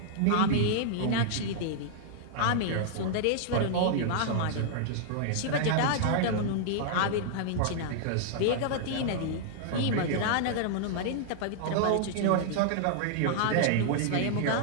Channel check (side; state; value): both; different; correlation -0.01